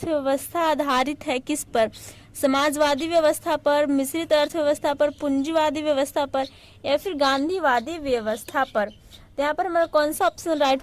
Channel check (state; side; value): identical; both; correlation 1.00